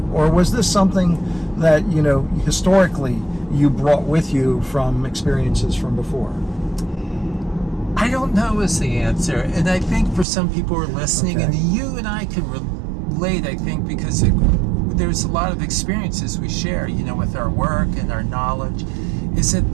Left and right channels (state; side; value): drops out; left; at 10.2 s